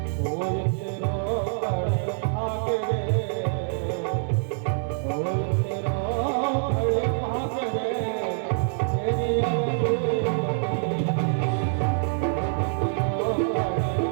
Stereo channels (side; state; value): left; silent; digital silence